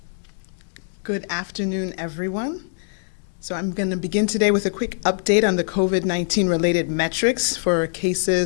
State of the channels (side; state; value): right; silent; digital silence